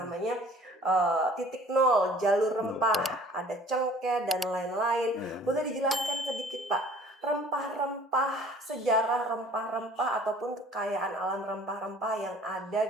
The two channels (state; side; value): normal; both; correlation 0.51